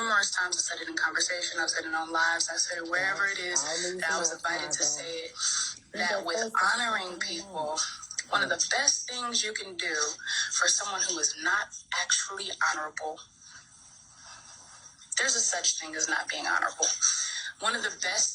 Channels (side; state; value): both; identical; correlation 1.00